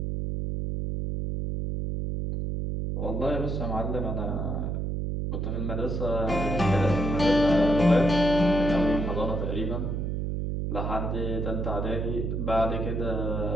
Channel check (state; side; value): noise; right; hum, 1 dB below the sound